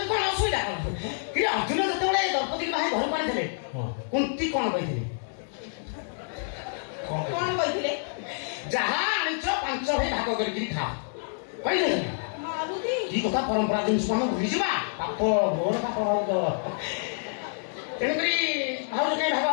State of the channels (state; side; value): silent; right; digital silence